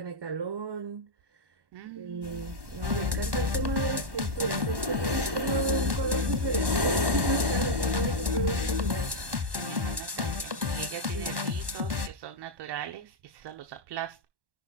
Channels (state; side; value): late; left; 1.1 ms